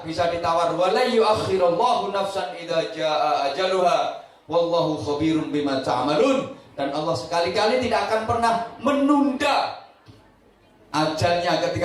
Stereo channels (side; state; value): both; identical; correlation 1.00